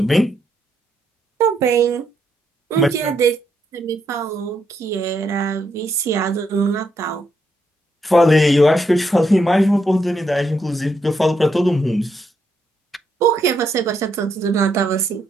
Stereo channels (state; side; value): normal; both; correlation 0.78